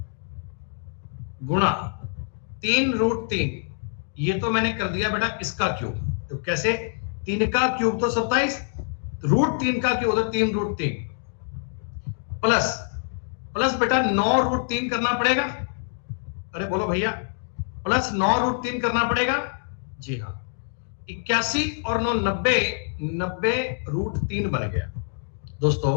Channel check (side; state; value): right; silent; digital silence